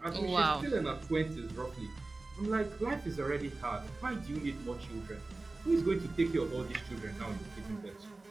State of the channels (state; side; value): quieter; left; 3.2 dB